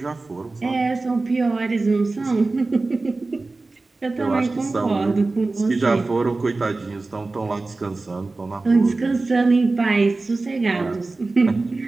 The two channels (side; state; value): left; quieter; 3.4 dB